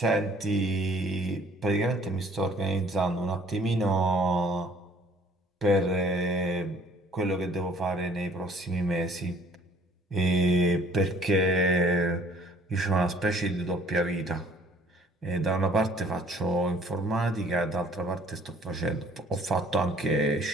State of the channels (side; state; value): both; normal; correlation 0.57